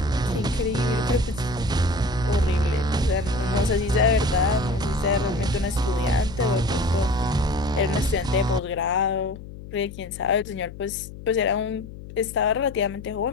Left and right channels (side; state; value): left; noise; hum, 14 dB below the sound